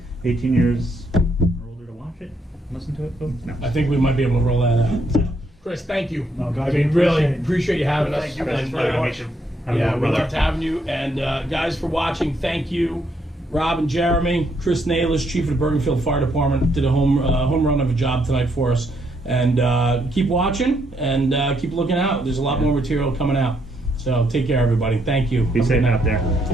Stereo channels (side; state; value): both; normal; correlation 0.74